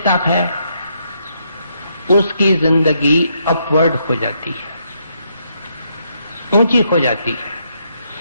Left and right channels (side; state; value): both; inverted; correlation -0.76